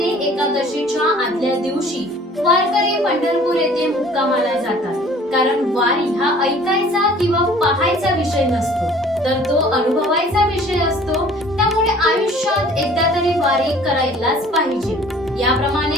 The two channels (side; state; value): both; normal; correlation 0.51